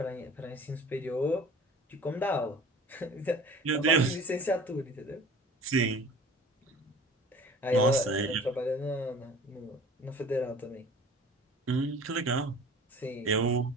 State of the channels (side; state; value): both; normal; correlation 0.44